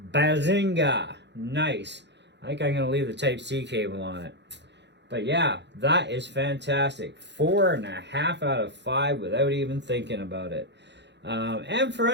Bazinga! Nice. I think I'm going to leave the Type-C cable on it. But yeah, that is fantastic. 4.5 out of 5 without even thinking about it. And for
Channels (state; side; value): late; left; 0.51 ms